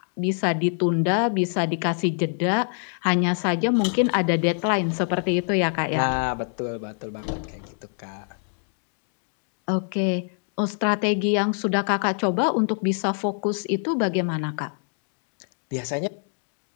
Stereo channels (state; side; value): silent; right; 58 dB below the other